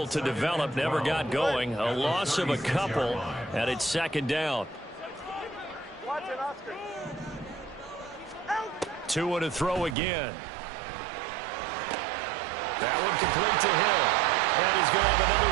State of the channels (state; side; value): drops out; left; at 10.0 s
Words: to develop, never got going. A loss of a couple, and it's second down. Tua to throw again. That one complete to Hill. And he's going to have